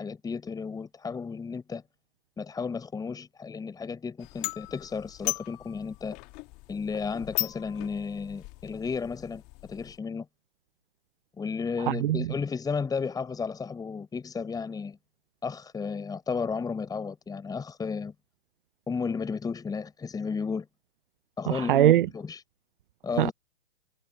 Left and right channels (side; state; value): both; normal; correlation 0.40